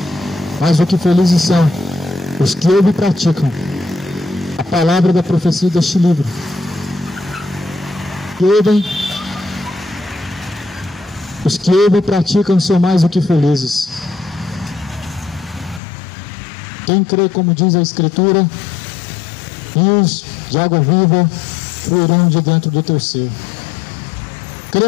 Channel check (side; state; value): right; drops out; at 15.8 s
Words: mais do que felizes são os que ouvem e praticam a palavra da profecia deste livro. Os que ouvem e praticam são mais do que felizes. Quem crê, como diz a Escritura, rios de água viva fluirão de dentro do teu ser.